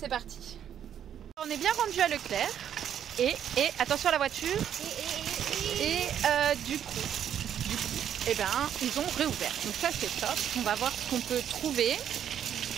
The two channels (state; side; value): quieter; left; 9.5 dB